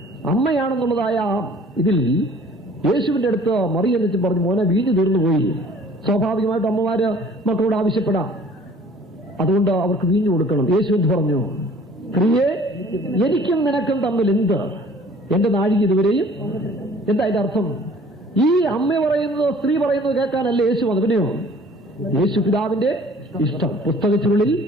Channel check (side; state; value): both; normal; correlation 0.52